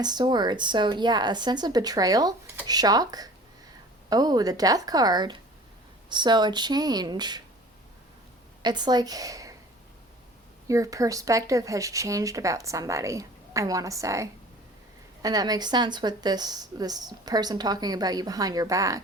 Swords. So yeah, a sense of betrayal, shock. Oh, the Death card. So a change. It's like your perspective has changed about somebody, I want to say. And that makes sense with this person talking about you behind your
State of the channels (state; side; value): normal; both; correlation 0.45